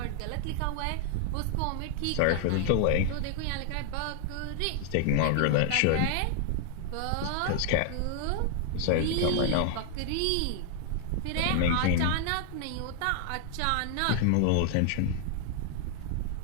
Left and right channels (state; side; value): different; both; correlation 0.00